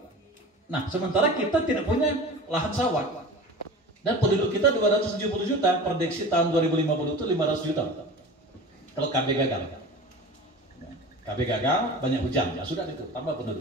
Nah, sementara kita tidak punya lahan sawah. Dan penduduk kita 270 juta, prediksi tahun 2050 itu 500 juta. Kalau KB gagal. KB gagal, banyak hujan, ya sudah itu, tambah penduduk.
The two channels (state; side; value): normal; both; correlation 0.36